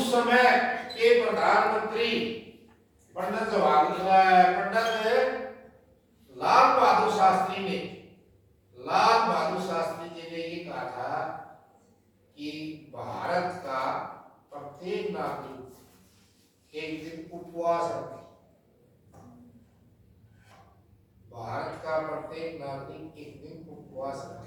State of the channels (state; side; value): identical; both; correlation 1.00